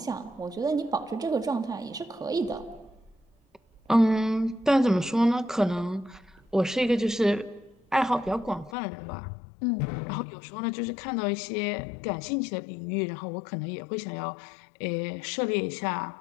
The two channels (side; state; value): right; drops out; at 8.8 s